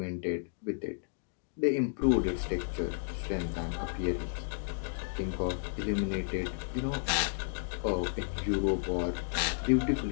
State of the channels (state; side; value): silent; right; digital silence